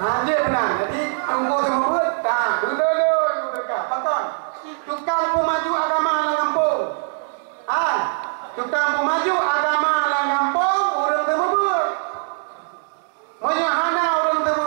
Dia benar. Jadi tunggu semua tak. Dulu dekat. Pakon. Tukang pemaju agama dalam kampung. Tukang pemaju agama dalam kampung orang terbebut. Menyahana orang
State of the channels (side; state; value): left; silent; digital silence